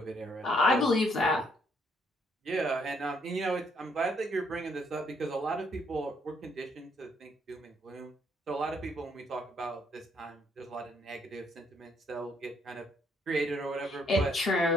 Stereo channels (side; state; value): both; normal; correlation 0.70